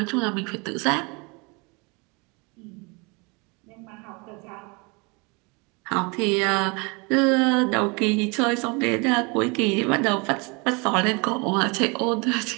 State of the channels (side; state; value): left; quieter; 29.8 dB